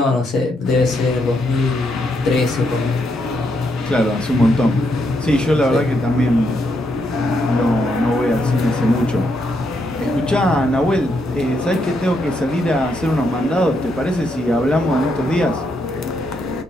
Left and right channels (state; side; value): normal; both; correlation 0.78